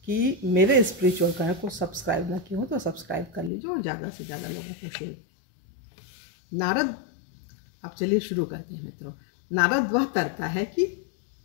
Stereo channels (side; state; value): right; drops out; at 3.5 s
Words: कि मेरे स्पिरिचुअल कनेक्ट को सब्सक्राइब ना किए हो तो सब्सक्राइब कर लीजिए और ज़्यादा से ज़्यादा लोगों को शेयर। नारद, अब चलिए शुरू करते हैं मित्रों। नारद वह तरता है कि